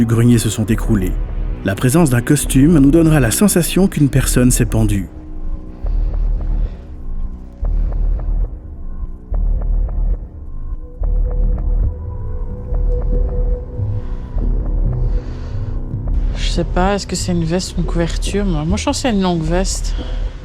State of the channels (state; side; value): identical; both; correlation 1.00